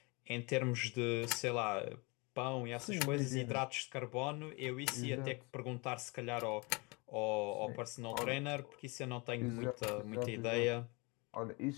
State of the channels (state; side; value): quieter; right; 28.4 dB